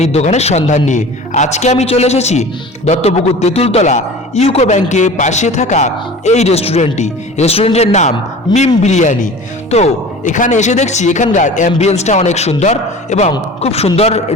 দোকানের সন্ধান নিয়ে। আজকে আমি চলে এসেছি দত্তপুকুর তেঁতুলতলা ইউকো ব্যাংকের পাশে থাকা এই রেস্টুরেন্টের নাম মিম বিরিয়ানি। তো এখানে এসে দেখছি এখানকার অ্যাম্বিয়েন্সটা অনেক সুন্দর এবং খুব সুন্দর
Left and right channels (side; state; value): both; normal; correlation 0.39